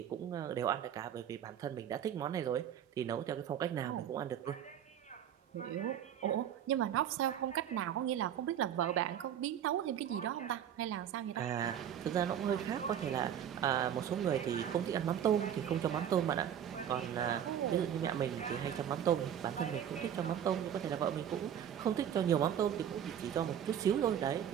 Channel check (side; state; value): left; quieter; 9.5 dB